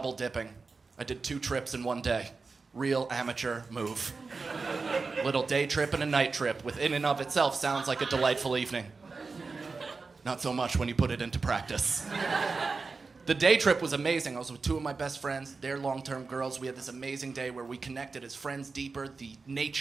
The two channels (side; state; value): left; quieter; 4.3 dB